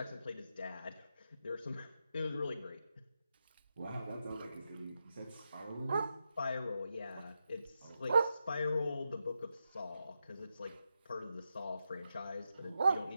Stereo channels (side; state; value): both; inverted; correlation -0.86